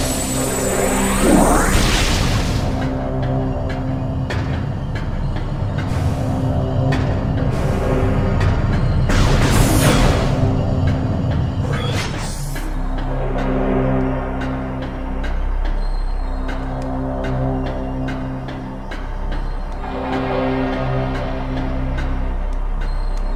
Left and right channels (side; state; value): both; identical; correlation 1.00